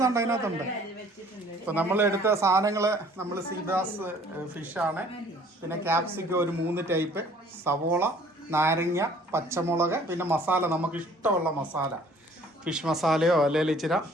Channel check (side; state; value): both; normal; correlation 0.55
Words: അതിനകത്തുണ്ട്. ഇപ്പൊ നമ്മൾ എടുത്ത സാധനങ്ങള് നമ്മൾ സീബ്രാസ് ഫിഷാണ്, പിന്നെ ക്യാപ്സിക്കം ഒരു 3 ടൈപ്പ്, സവോള, നാരങ്ങ, പച്ചമുളക്, പിന്നെ മസാല നമുക്ക് ഇഷ്ടമുള്ള മസാല, ഫിഷ് മസാലയോ അല്ലെങ്കിൽ ഇച്ചിരി